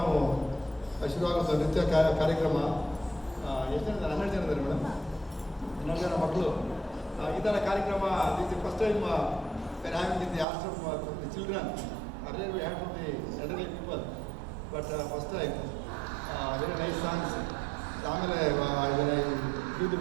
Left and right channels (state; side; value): drops out; left; at 10.5 s